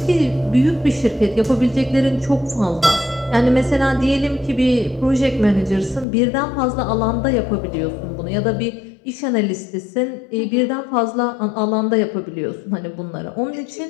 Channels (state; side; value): drops out; right; at 6.1 s